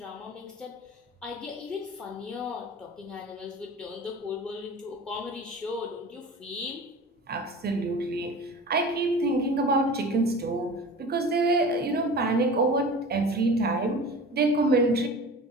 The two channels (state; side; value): normal; both; correlation 0.37